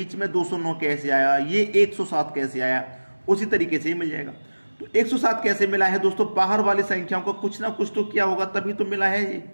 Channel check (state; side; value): inverted; both; correlation -1.00